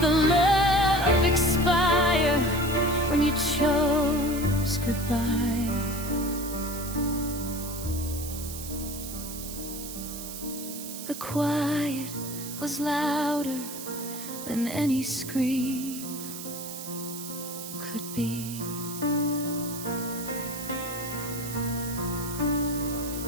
love expire. When you chose The quiet was louder than any scream could be.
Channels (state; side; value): noise; right; hiss, 9 dB below the sound